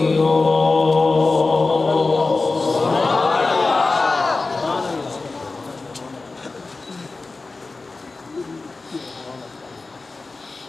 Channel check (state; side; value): quieter; right; 3.7 dB